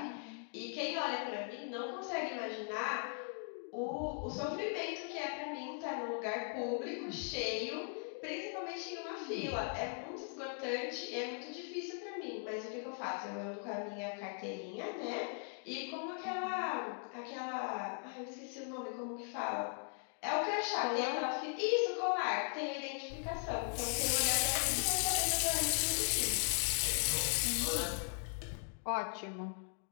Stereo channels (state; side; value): silent; right; 52 dB below the other